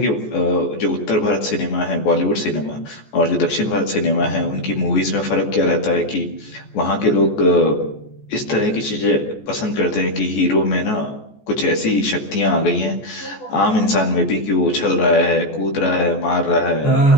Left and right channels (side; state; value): right; late; 14 ms